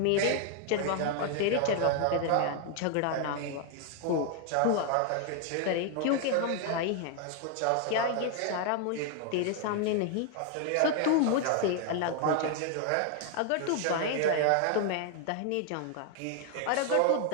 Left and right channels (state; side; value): different; both; correlation 0.00